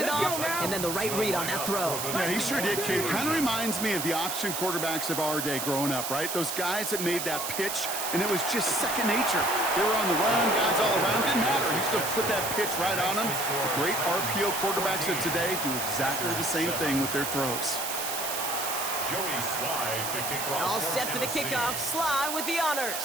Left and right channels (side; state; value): right; noise; hiss, 3 dB below the sound